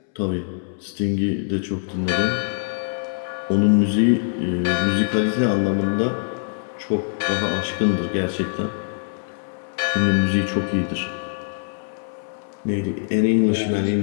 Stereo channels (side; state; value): right; silent; 64 dB below the other